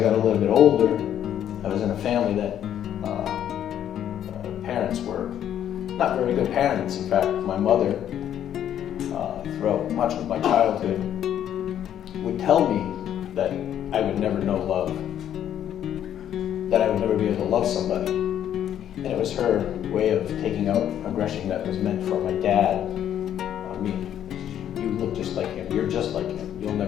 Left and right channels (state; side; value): quieter; right; 10.3 dB